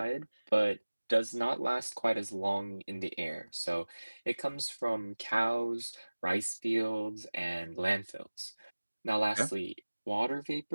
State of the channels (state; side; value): inverted; both; correlation -1.00